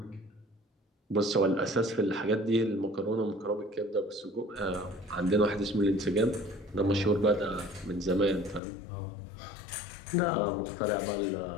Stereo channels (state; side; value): drops out; right; at 8.6 s